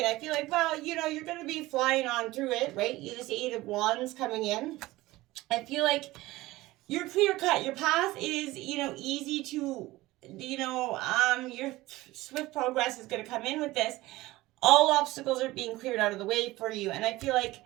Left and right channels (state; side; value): quieter; left; 18.6 dB